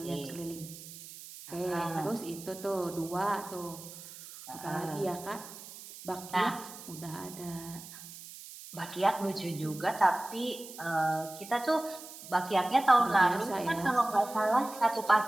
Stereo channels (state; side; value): noise; right; hiss, 15 dB below the sound